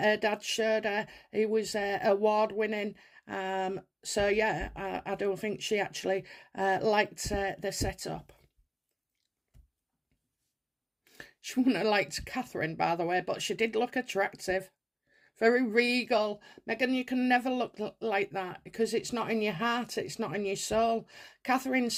dad showed her. He was award winning. So yeah, I don't think she actually liked the setup. She wouldn't have liked Catherine, by the way, but she did look attractive. Very regal. Meghan, you can never look like that, because it's not in your heart, it's not in your soul. Catherine's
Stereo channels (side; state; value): both; identical; correlation 1.00